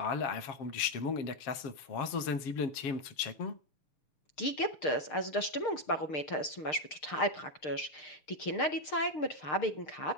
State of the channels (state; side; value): late; right; 6.6 ms